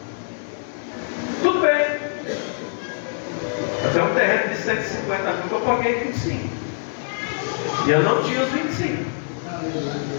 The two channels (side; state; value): right; silent; 63 dB below the other